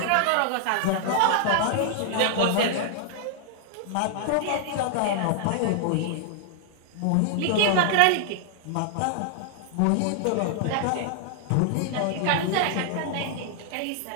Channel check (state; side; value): different; both; correlation -0.01